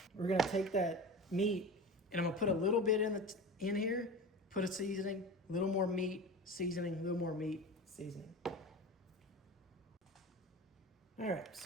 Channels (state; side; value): normal; both; correlation 0.31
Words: We're gonna take that meat and I'm gonna put a little bit in here, put a seasoning, a little more meat, seasoning, a little more meat, seasoning. All right,